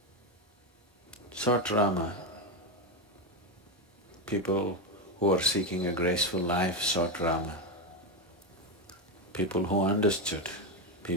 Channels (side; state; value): both; normal; correlation 0.11